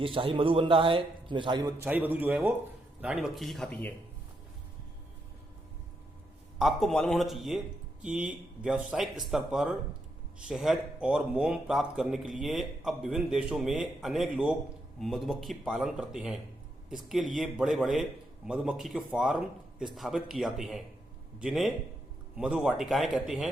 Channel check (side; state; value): both; normal; correlation 0.81